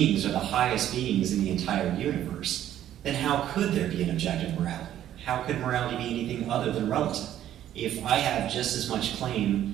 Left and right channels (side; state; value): left; quieter; 11.7 dB